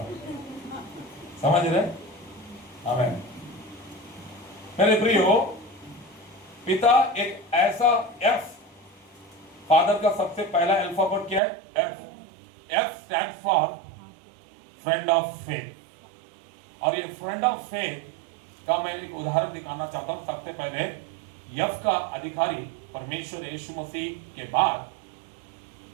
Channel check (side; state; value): left; drops out; at 11.4 s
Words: समझ रहे? आमीन। मेरे प्रियो, पिता एक ऐसा एफ, फादर का सबसे पहला अल्फाबेट क्या है? F. F stand for friend of faith. और ये फ्रेंड ऑफ फेथ का मैं एक उदाहरण दिखाना चाहता हूं। सबसे पहले एफ का अधिकारी परमेश्वर यीशु मसीह के बाद